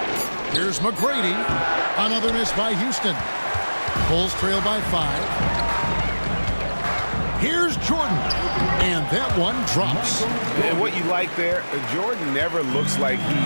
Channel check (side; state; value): both; inverted; correlation -1.00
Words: Here's McGrady. Another miss by Houston. Bulls trail by 5. Here's Jordan. And that one drops. And what you like there, Jordan never looks like